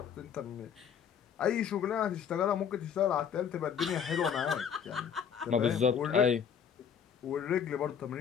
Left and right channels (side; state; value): right; quieter; 7.8 dB